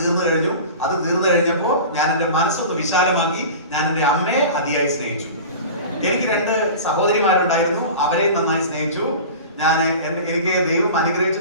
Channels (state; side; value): inverted; both; correlation -0.35